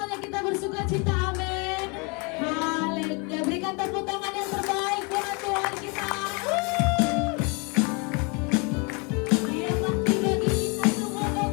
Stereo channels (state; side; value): quieter; right; 31.1 dB